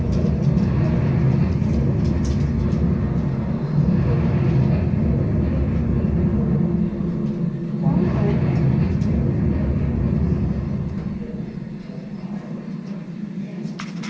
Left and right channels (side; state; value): both; identical; correlation 1.00